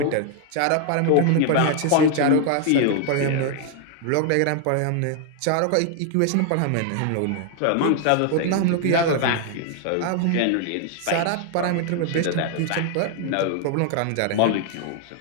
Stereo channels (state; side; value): different; both; correlation 0.00